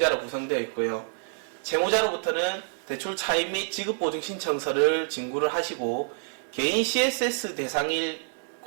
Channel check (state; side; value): silent; left; digital silence